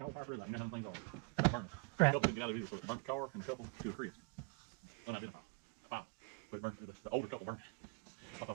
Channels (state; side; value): quieter; left; 34.5 dB